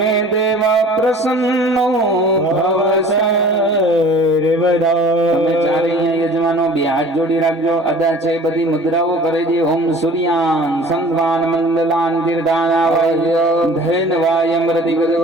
દેવા પ્રસન્નો ભવ તમે ચારે યજમાનો બે હાથ જોડી રાખજો. અદા છે બધી મુદ્રાઓ કરી દે. ઓમ સૂર્યાન સંધવાન મંડલાન તીર્ધાના ધૈન વાયમ રતિ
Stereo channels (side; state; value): both; normal; correlation 0.46